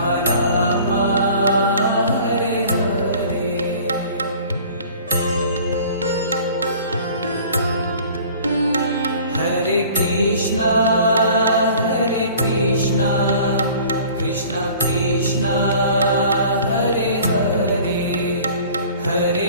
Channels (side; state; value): both; inverted; correlation -0.48